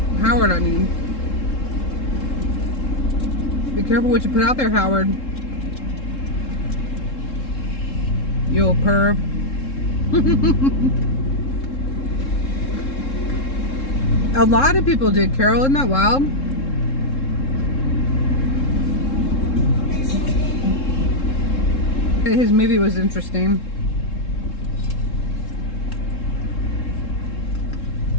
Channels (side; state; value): right; late; 3.7 ms